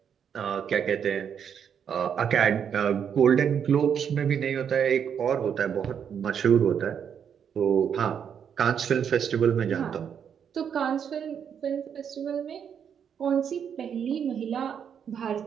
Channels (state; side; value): quieter; left; 7.9 dB